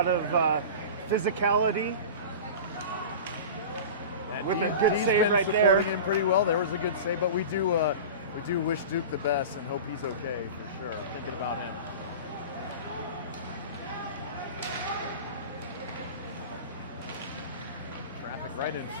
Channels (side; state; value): both; inverted; correlation -0.32